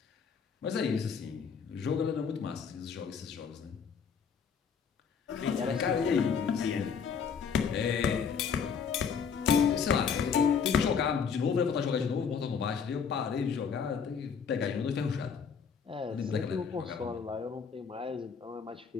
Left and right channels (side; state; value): right; quieter; 6.5 dB